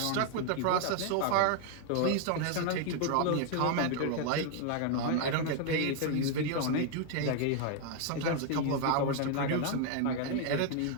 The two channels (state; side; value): different; both; correlation 0.00